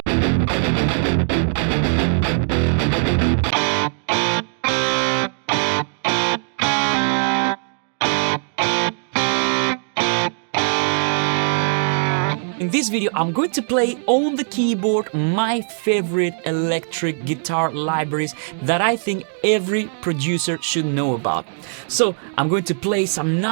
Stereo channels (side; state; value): left; silent; 65 dB below the other